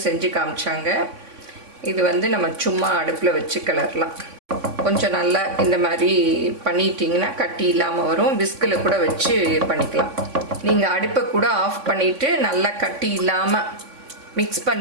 செஞ்சு காமிச்சாங்க. இது வந்து நம்ம சும்மா அடுப்பில் வச்சு கிளறலாம். கொஞ்சம் நல்லா இந்த மாதிரி பண்ணிட்டீங்கன்னா கட்டி இல்லாமல் வரும். விஸ்கில் கூட வச்சு பண்ணிக்கலாம். நீங்கள் அடுப்பை கூட ஆஃப் பண்ணிவிட்டு நல்லா கட்டி இல்லாமல் மிக்ஸ்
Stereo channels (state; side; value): late; left; 3.6 ms